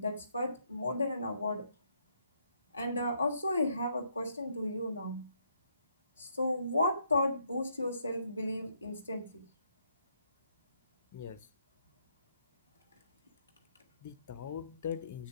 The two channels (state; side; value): inverted; both; correlation -0.74